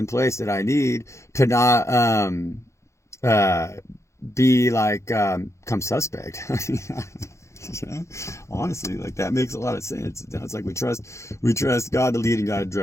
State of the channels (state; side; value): late; right; 0.14 ms